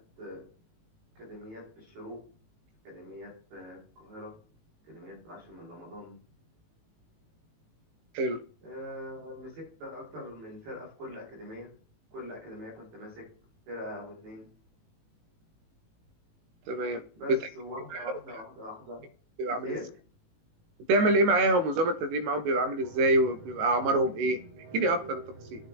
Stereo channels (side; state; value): left; late; 18 ms